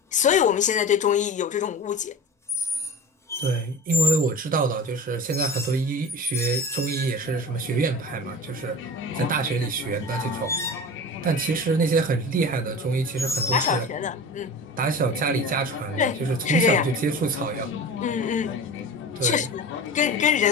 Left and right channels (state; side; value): normal; both; correlation 0.33